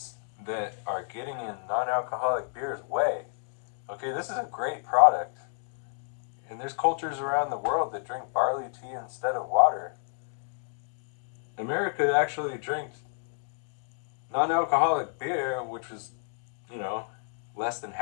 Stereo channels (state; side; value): silent; right; digital silence